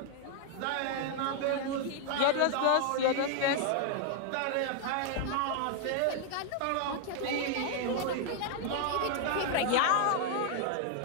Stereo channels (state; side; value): different; both; correlation 0.00